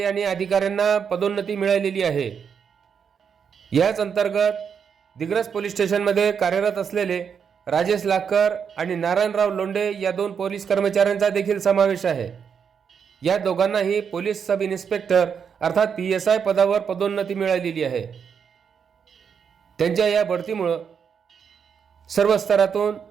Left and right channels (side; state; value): left; quieter; 7.0 dB